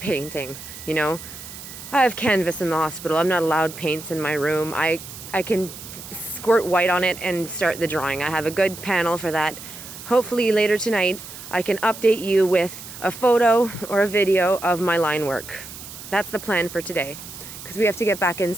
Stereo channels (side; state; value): right; noise; hiss, 13 dB below the sound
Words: you know. I have canvas in the hospital. I'm not allowed paints in my room. I can squirt white on it and start the drawing. I have a good panel for that. Hopefully later tonight I can update you with a photo or a video of my line work. That's the plan for today, because we have to get back